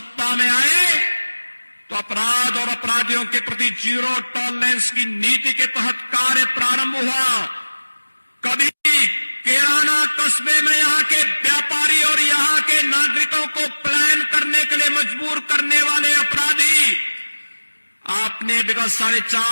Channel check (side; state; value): both; inverted; correlation -1.00